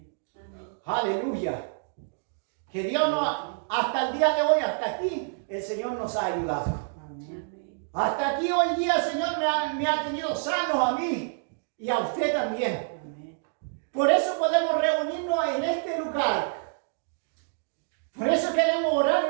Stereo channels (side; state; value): left; silent; digital silence